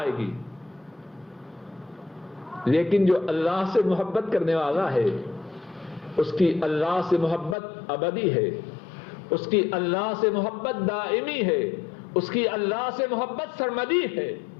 گی۔ لیکن جو اللہ سے محبت کرنے والا ہے اس کی اللہ سے محبت ابدی ہے، اس کی اللہ سے محبت دائمی ہے، اس کی اللہ سے محبت سرمدی ہے۔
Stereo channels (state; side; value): drops out; right; at 7.6 s